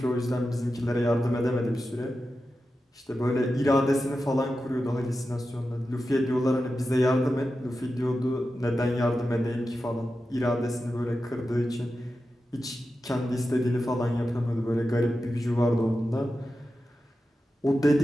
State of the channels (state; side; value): normal; both; correlation 0.91